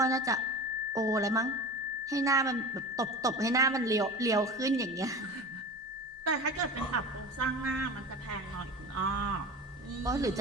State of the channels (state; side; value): normal; both; correlation 0.32